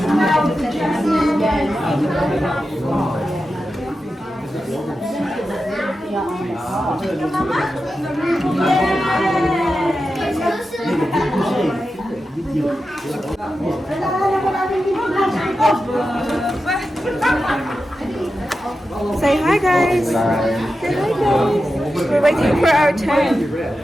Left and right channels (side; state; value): both; normal; correlation 0.91